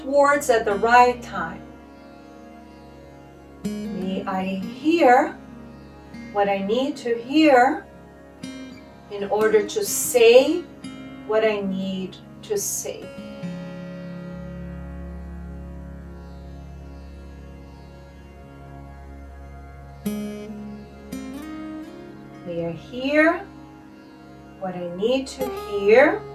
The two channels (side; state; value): both; identical; correlation 1.00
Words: words at the right time. May I hear what I need to hear in order to say what I need to say. May I hear what I need to hear